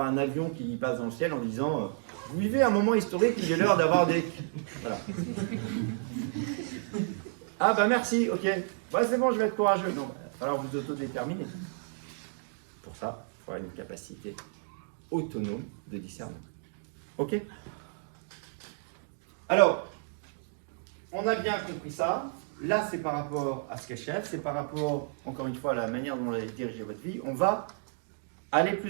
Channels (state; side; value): silent; left; digital silence